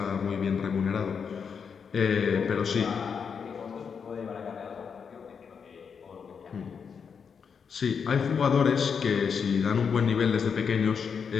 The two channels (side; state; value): right; quieter; 6.4 dB